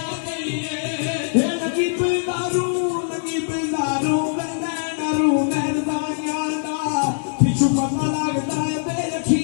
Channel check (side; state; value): right; silent; digital silence